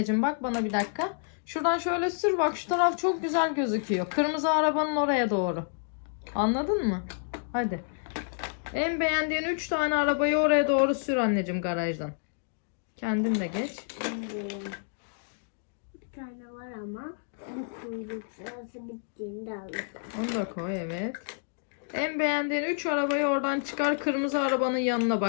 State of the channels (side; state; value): right; silent; digital silence